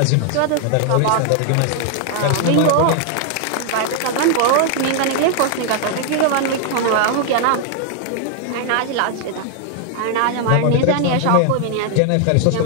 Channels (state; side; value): different; both; correlation 0.00